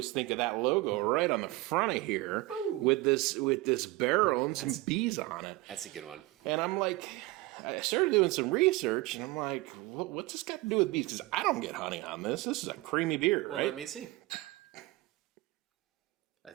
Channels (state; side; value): quieter; left; 20.0 dB